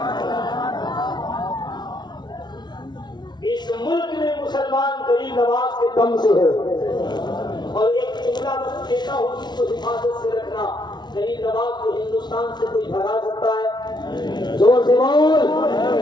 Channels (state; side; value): late; right; 0.20 ms